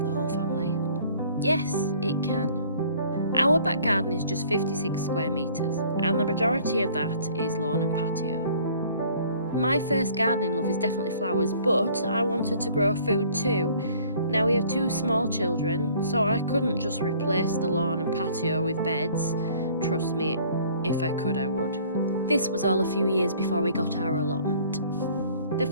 the whole family? Yes, it can. Our back garden is just 56 square metres, and the majority of that is lawn and patio. My first gardening love is definitely flowers, but I wanted to grow food too. Now we have two small children, so I couldn't just replace the lawn and patio with beds. Trust me, if I could, I would. This was all a few years before we got our allotment. The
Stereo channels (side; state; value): both; inverted; correlation -0.54